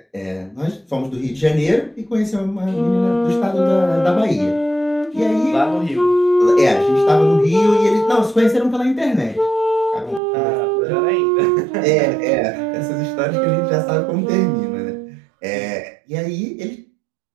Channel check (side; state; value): left; drops out; at 10.2 s